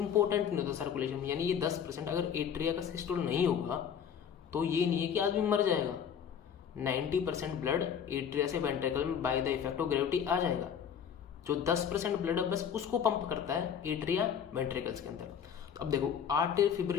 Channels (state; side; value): quieter; right; 8.1 dB